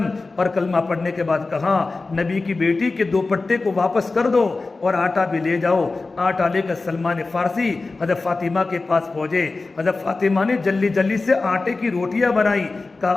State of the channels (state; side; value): quieter; right; 3.6 dB